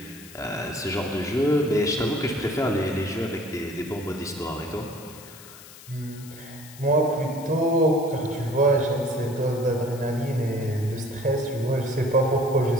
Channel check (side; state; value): left; noise; hiss, 18 dB below the sound